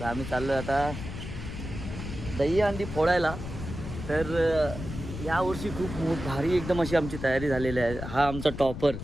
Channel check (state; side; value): noise; left; rumble, 8 dB below the sound